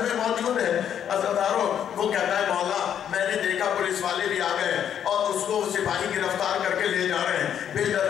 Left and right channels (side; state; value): right; quieter; 9.2 dB